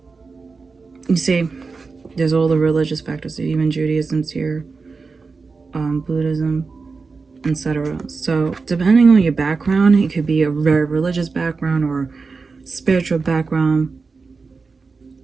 You see, there's all the religious factors, even Judaism's here, Buddhism, etc. So depending on your background, it could be a very religious background or spiritual background,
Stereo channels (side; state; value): left; quieter; 4.5 dB